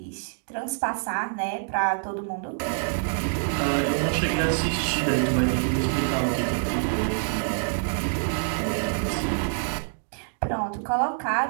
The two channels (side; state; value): left; silent; digital silence